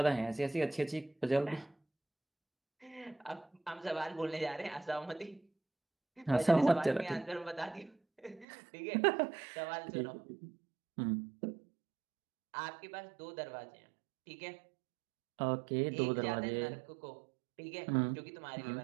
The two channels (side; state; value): left; drops out; at 8.5 s